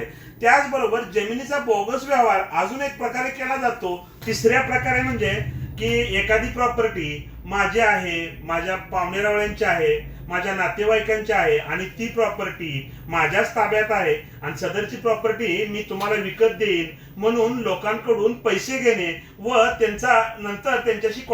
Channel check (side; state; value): both; identical; correlation 1.00